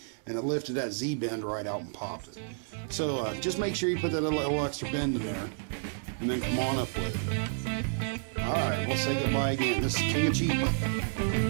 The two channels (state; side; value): silent; left; 58 dB below the other